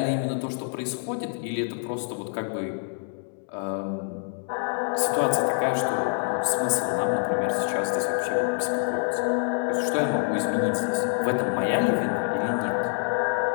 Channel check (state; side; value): silent; right; 61 dB below the other